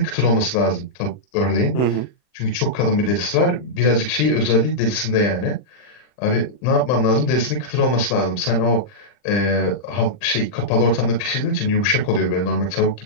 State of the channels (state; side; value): late; right; 40 ms